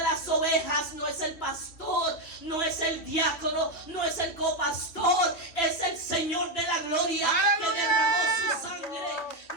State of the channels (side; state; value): right; late; 3.2 ms